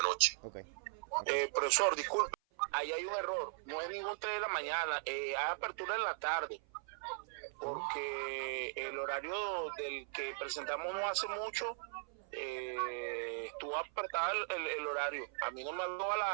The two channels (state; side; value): silent; left; 52 dB below the other